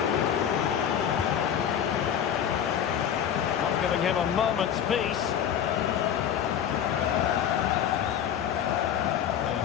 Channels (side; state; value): right; quieter; 9.1 dB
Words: Not giving him a moment's peace.